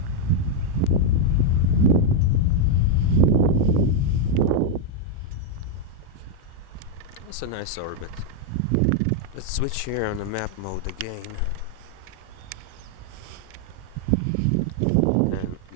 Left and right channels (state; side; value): different; both; correlation 0.00